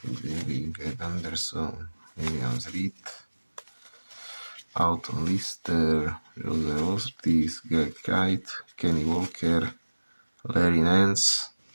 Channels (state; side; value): inverted; both; correlation -1.00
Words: Ed Anderson, Williams Reed, Alton Lister, Jose Ortiz, Greg Kite, Kenny Walker, Larry Nance,